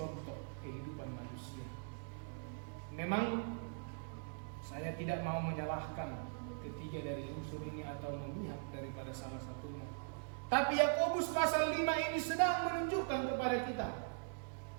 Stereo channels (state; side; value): silent; left; digital silence